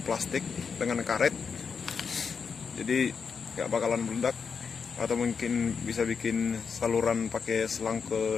plastik, dengan karet, jadi gak bakalan meledak. Atau mungkin bisa bikin saluran pakai selang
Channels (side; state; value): right; quieter; 5.9 dB